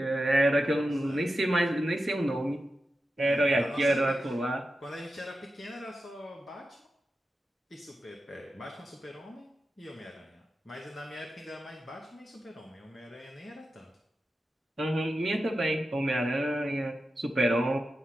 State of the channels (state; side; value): normal; both; correlation 0.91